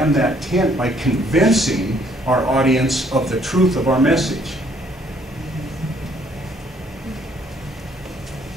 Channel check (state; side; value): normal; both; correlation 0.64